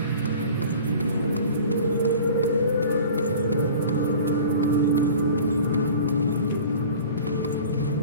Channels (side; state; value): both; inverted; correlation -0.42